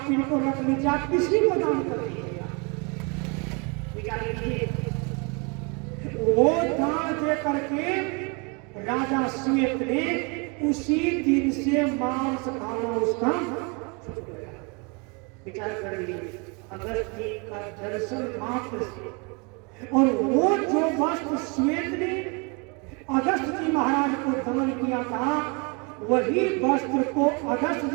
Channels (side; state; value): left; quieter; 32.0 dB